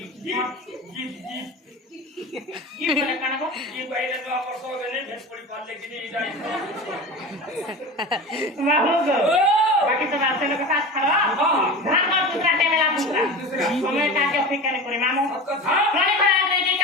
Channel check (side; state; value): both; normal; correlation 0.31